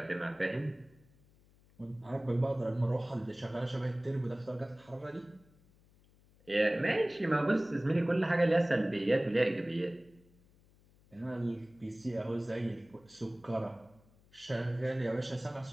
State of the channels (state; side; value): noise; left; hum, 29 dB below the sound